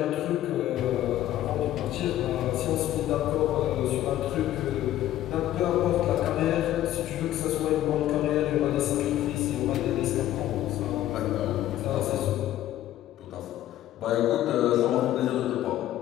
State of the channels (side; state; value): right; quieter; 13.2 dB